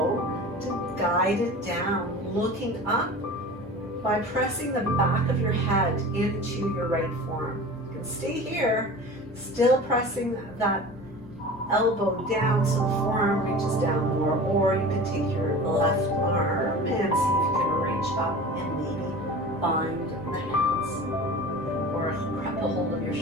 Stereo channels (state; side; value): normal; both; correlation 0.37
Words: to guide it down, looking up by pressing the back of your head into your right forearm. You can stay here, still pressing that elbow down so the forearm reaches down more, or you can take your left arm and